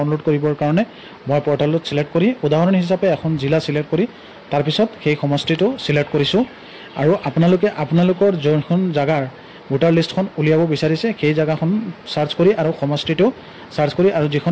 কৰিবৰ কাৰণে মই পৰ্টেলত সিলেক্ট কৰি উদাহৰণ হিচাপে এখন জিলা সিলেক্ট কৰি তাৰ পিছত সেই সমষ্টিটো সিলেক্ট কৰিছো আৰু আপোনালোকে আপোনালোকৰ যোনখন জাগাৰ ভোটাৰ লিষ্টখন উলিয়াব বিচাৰিছে সেই জাগাখন সাৰ্চ কৰি আৰু সমষ্টিটো সাৰ্চ কৰি আৰু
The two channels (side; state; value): both; identical; correlation 1.00